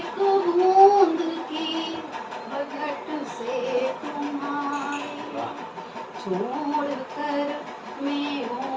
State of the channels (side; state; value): both; identical; correlation 1.00